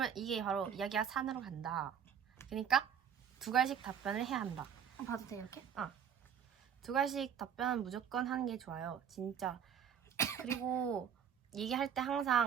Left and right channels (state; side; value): quieter; left; 8.1 dB